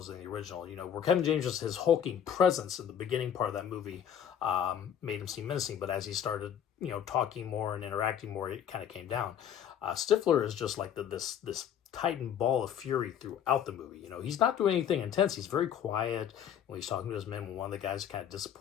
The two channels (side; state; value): right; quieter; 9.1 dB